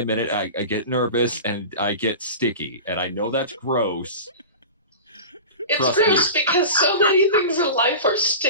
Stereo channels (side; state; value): both; inverted; correlation -0.32